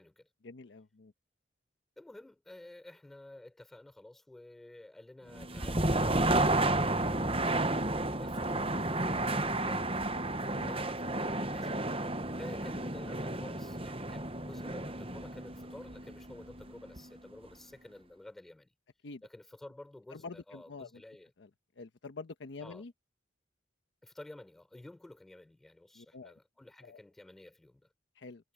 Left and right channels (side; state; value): both; normal; correlation 0.34